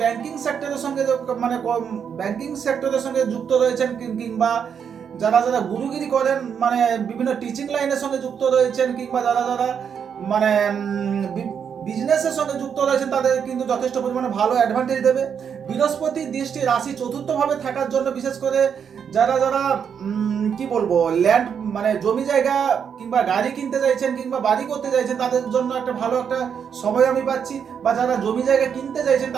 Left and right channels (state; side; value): quieter; left; 7.4 dB